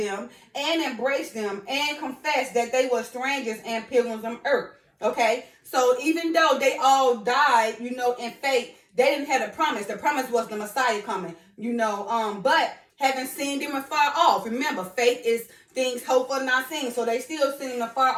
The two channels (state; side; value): identical; both; correlation 1.00